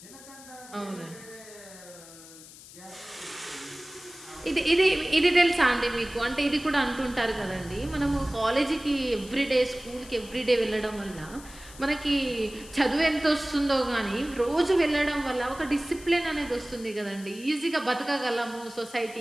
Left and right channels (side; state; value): left; noise; hiss, 18 dB below the sound